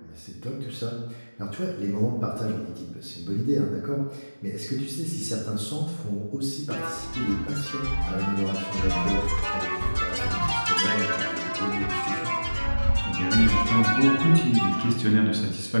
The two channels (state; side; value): inverted; both; correlation -1.00